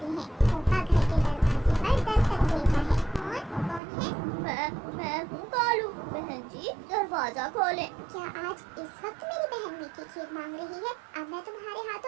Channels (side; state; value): left; drops out; at 3.8 s